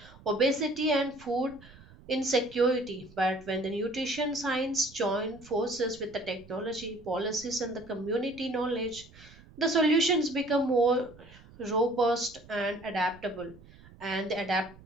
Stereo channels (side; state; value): right; noise; rumble, 22 dB below the sound